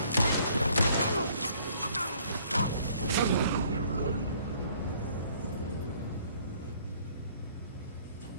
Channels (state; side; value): inverted; both; correlation -0.61